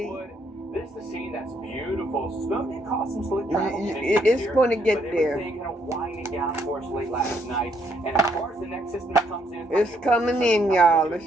This is the scene that's beautiful. Snow did cause some slick travel. It's going to get there. Everything kind of winding down for us late last night. And as far as the next system comes in, it's coming in, y'all. It's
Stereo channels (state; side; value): normal; both; correlation 0.71